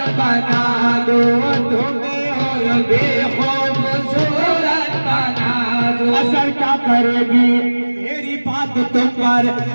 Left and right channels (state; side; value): inverted; both; correlation -1.00